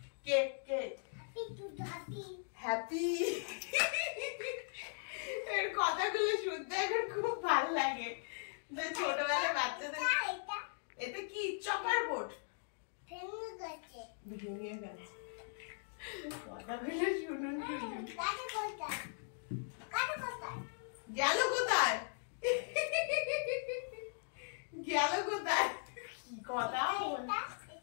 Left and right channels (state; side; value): silent; right; digital silence